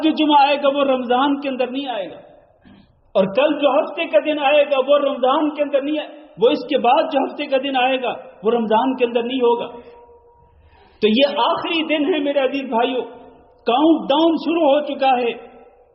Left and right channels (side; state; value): both; identical; correlation 1.00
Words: جو جمعہ آئے گا وہ رمضان کے اندر نہیں آئے گا، اور کل جو ہفتے کا دن آئے گا وہ رمضان کے اندر نہیں وہ اس کے بعد جو ہفتے کا دن آئے گا وہ رمضان کے اندر نہیں ہوگا۔ تو یہ آخری دن ہے میرے عزیز بھائیوں، کاؤنٹ ڈاؤن شروع ہو چکا ہے۔